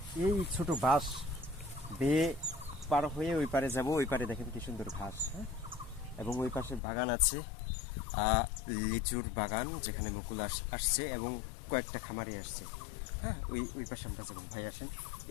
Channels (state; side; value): drops out; right; at 6.8 s